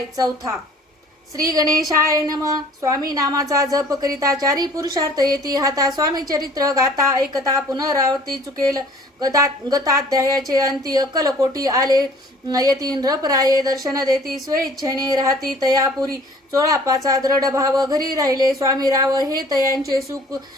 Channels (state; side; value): normal; both; correlation 0.52